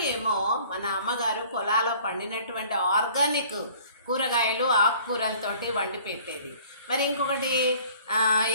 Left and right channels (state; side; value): inverted; both; correlation -0.51